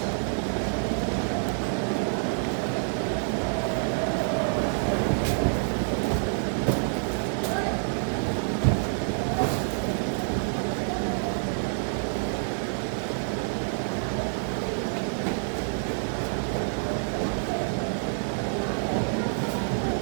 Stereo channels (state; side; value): silent; left; digital silence